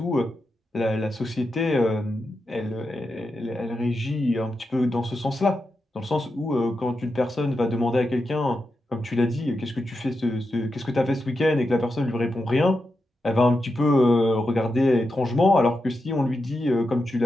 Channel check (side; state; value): both; normal; correlation 0.88